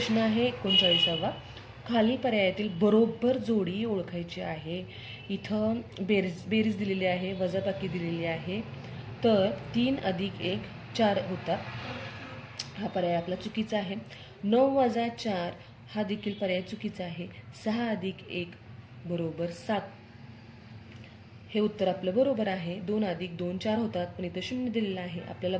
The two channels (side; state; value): both; identical; correlation 1.00